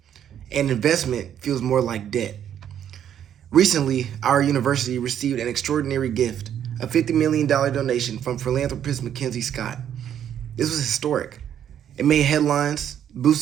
and investment feels more like debt. Recently, our university received an extraordinary gift, a $50 million donation from philanthropist Mackenzie Scott. This was historic. It made headlines,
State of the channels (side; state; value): left; quieter; 9.7 dB